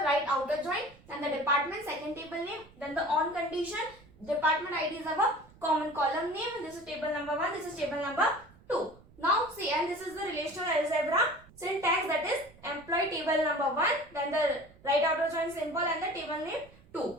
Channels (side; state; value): right; noise; rumble, 25 dB below the sound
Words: right outer join, and the department second table name, then the on condition, department ID is our common column name, and this is table number 1, this is table number 2. Now see, and this is the relational algebra syntax, that is employee table number 1, then the right outer join symbol and the table name 2.